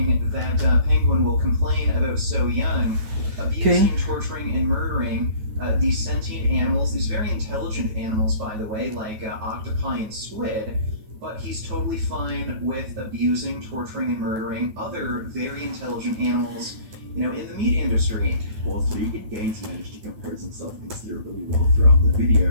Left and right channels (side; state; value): left; late; 9.2 ms